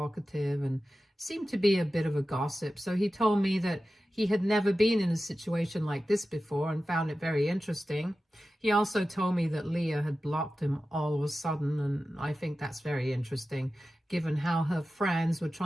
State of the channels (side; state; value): both; normal; correlation 0.94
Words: and seemed to be a bit of a gossip. So he told me that he had never been in a situation like this before and found it very interesting. He also told me that Leah had blocked him all of a sudden, and I think that's very interesting, given how her friends were